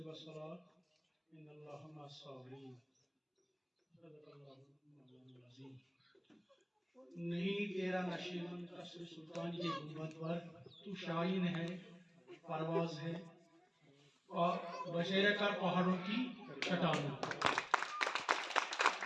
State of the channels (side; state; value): both; identical; correlation 1.00